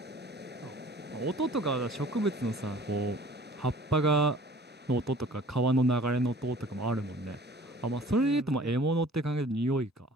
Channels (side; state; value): both; normal; correlation 0.49